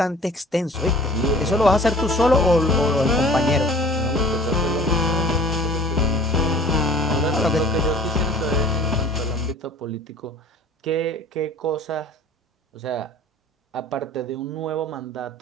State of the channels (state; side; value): normal; both; correlation 0.47